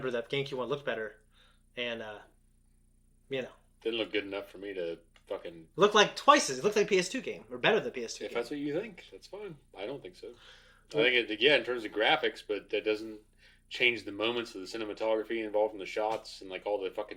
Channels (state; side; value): identical; both; correlation 1.00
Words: that GameCube one looked better, and didn't look good enough for me to fucking look like twice as it looked like a PS2 game or better than a PS2 game. If that's what you think, that's fine. I don't think so. I think in terms of graphics, but that doesn't change the moments of the cinematography involved in the shots and like all the